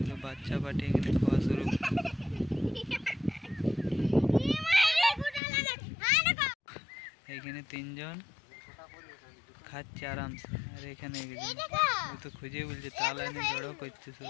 বাচ্চা পাঠিয়ে এখানে খাওয়া শুরু। এখানে তিনজন খাচ্ছে আরামসে, আর এখানে একজন ও তো খুঁজে বলছে তাল এনে জড়ো করছে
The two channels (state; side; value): drops out; right; at 5.4 s